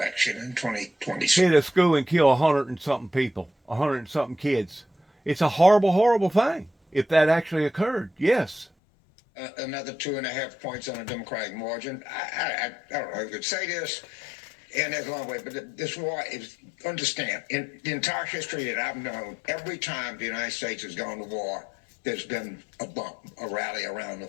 in 2020. hit a school and kill 100 and something people, 100 and something kids. It's a horrible, horrible thing. If that actually occurred, yes. Another 2.5 points on a Democratic margin. I don't know if I could say this, and there's a long way, but this war is, understand, in the entire history that I've known, every time the United States has gone to war, there's been a bump, a rally around the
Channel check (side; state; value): right; drops out; at 8.7 s